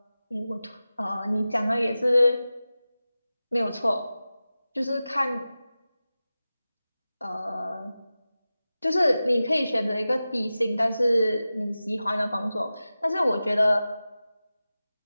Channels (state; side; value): inverted; both; correlation -0.95